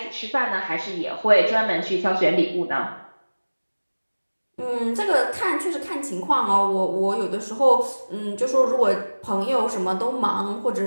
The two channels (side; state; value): both; inverted; correlation -1.00